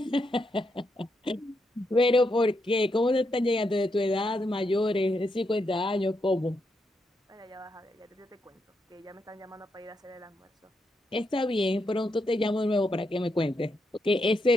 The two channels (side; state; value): both; normal; correlation 0.82